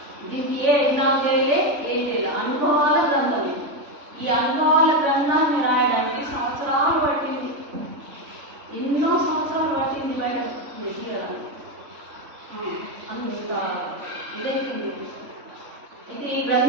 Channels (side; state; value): left; late; 3.5 ms